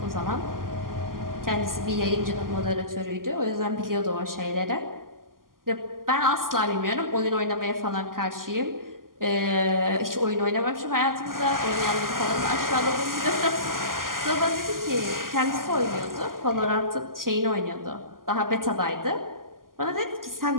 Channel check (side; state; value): left; late; 0.91 ms